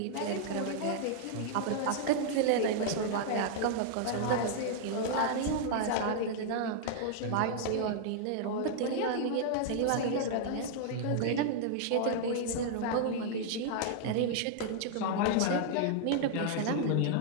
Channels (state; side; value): different; both; correlation -0.01